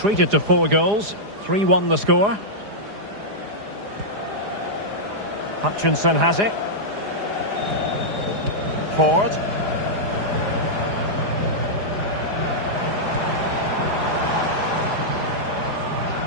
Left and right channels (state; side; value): late; left; 4.9 ms